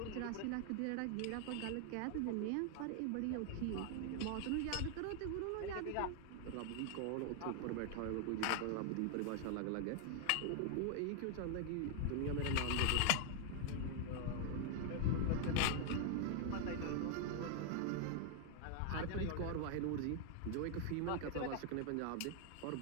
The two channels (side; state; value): both; different; correlation 0.00